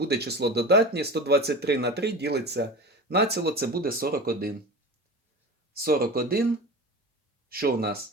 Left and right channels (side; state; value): both; normal; correlation 0.31